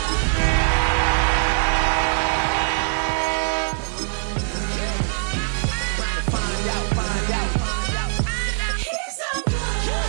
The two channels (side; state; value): left; silent; digital silence